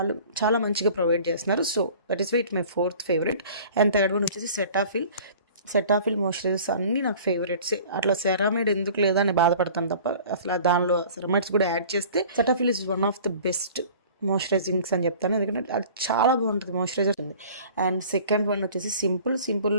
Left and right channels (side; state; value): both; inverted; correlation -0.45